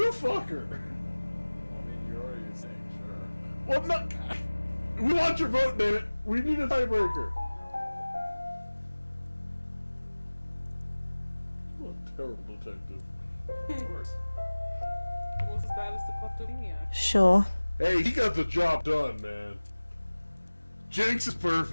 You fucker! Well, I mean, you're already saying sure. Well, no. We want your vote, damn it. We need a tiebreaker. What a terrible detective. Of course. Almost as bad as the kleptomaniac. Sure. Hey, he got the job done, man. Jinx is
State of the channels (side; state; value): both; inverted; correlation -1.00